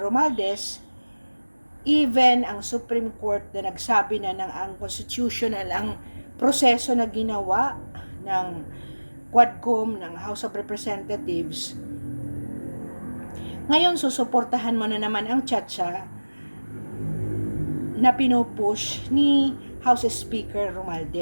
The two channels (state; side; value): inverted; both; correlation -1.00